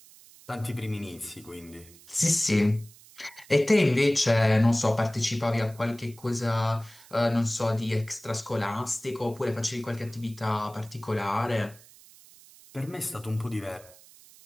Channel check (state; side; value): noise; right; hiss, 23 dB below the sound